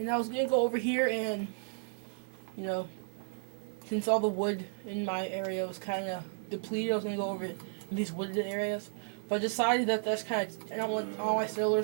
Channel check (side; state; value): left; silent; 56 dB below the other